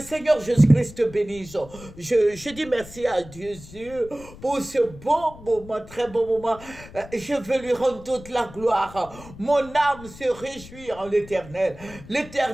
Seigneur Jésus-Christ te bénisse. Je dis merci à Dieu pour ce bon moment, très bon moment. Je veux lui rendre toute la gloire. Mon âme se réjouit en l'Éternel.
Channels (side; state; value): left; noise; rumble, 18 dB below the sound